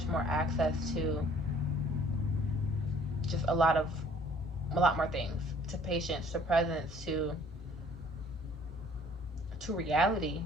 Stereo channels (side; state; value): both; normal; correlation 0.56